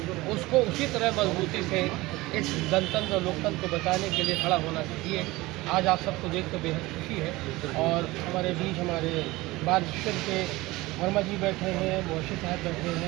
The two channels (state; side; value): quieter; left; 20.2 dB